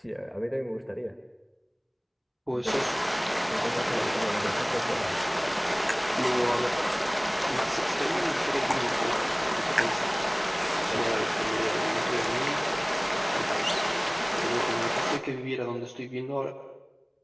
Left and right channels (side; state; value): both; identical; correlation 1.00